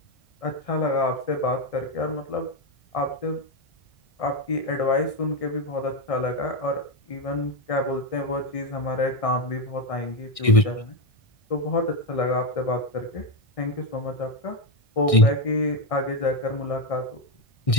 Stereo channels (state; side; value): late; right; 1.6 ms